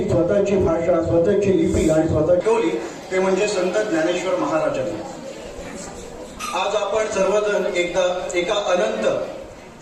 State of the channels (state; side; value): identical; both; correlation 1.00